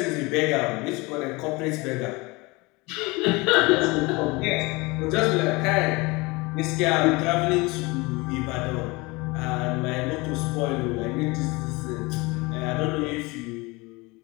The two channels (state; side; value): quieter; right; 24.6 dB